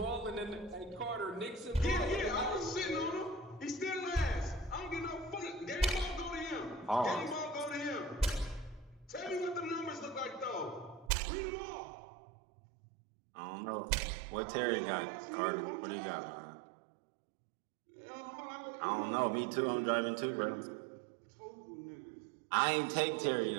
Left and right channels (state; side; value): drops out; left; at 11.1 s